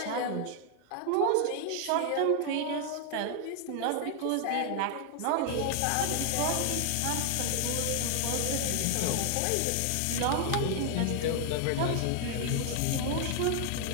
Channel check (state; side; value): different; both; correlation 0.00